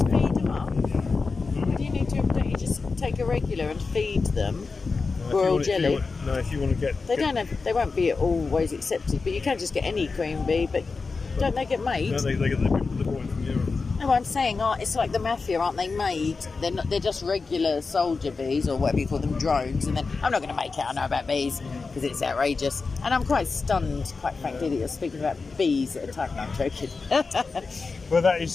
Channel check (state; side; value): quieter; right; 4.3 dB